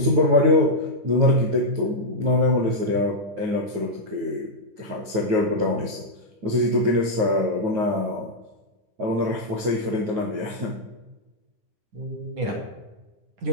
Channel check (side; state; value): left; late; 9.4 ms